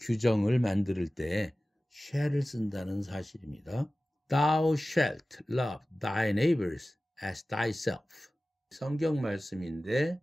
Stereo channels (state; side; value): normal; both; correlation 0.96